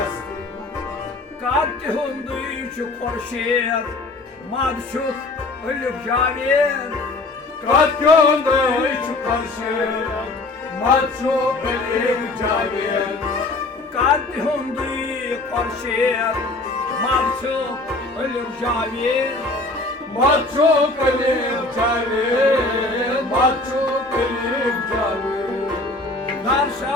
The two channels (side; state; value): right; quieter; 3.0 dB